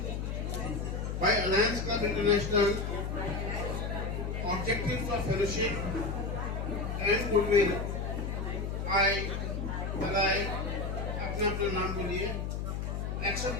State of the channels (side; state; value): left; noise; hum, 3 dB below the sound